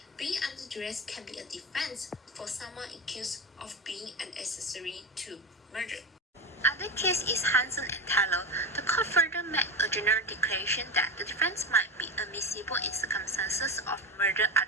being under duress can be a defense for someone accused of being an accessory to murder. Other case is Hansen and Taylor. The court further made a general declaration that the defense might be admissible in circumstances of murder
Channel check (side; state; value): both; normal; correlation 0.20